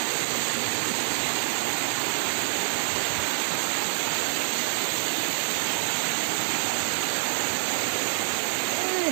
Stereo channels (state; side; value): silent; left; 60 dB below the other